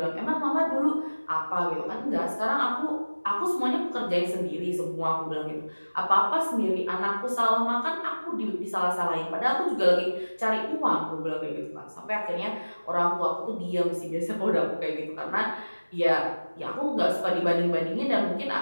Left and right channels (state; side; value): inverted; both; correlation -1.00